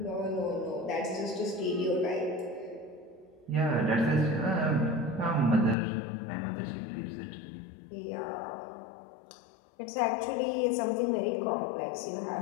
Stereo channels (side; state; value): right; drops out; at 5.8 s